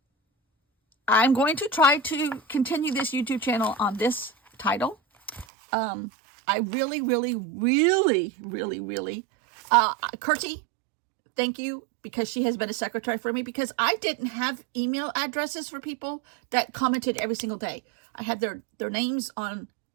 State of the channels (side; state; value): left; drops out; at 5.5 s